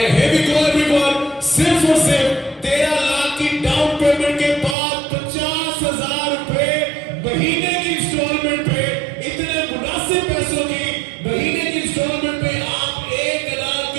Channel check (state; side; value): drops out; left; at 4.8 s